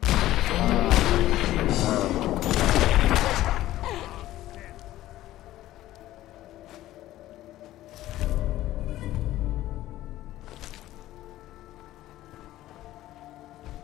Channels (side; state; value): right; quieter; 14.8 dB